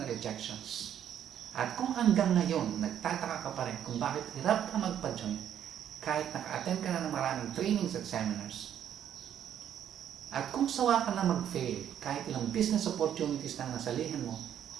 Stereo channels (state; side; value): quieter; left; 9.9 dB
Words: rejections, at kung hanggang ngayon nagtataka ka pa rin kung bakit hirap ka magpa-join kahit naka-attend ka na ng maraming trainings at seminars, at kung sawa ka na mag-fail kahit ilang business opportunities na nasalihan mo,